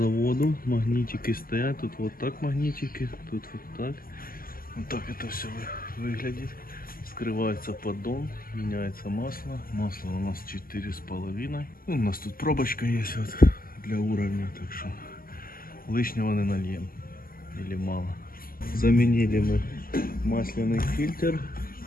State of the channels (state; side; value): late; right; 0.42 ms